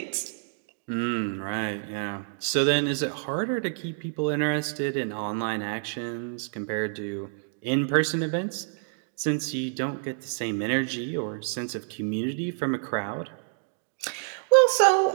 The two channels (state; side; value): silent; left; digital silence